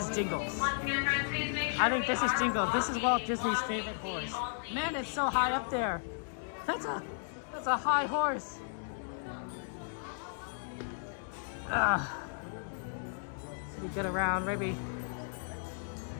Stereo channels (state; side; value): silent; right; digital silence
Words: Jingles. I think this is Jingles. This is Walt Disney's favorite horse. Man, it's so high up there. That's a high horse. So we get around, maybe